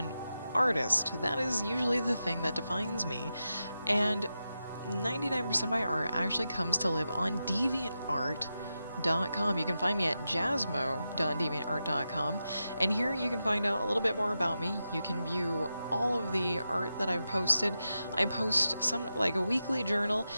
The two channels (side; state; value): both; inverted; correlation -0.90